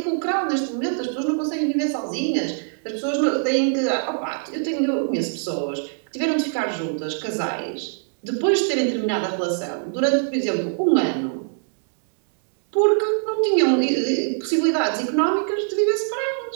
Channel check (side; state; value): left; silent; digital silence